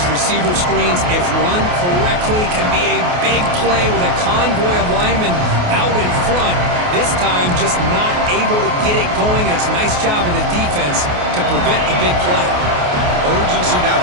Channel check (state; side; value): late; left; 28 ms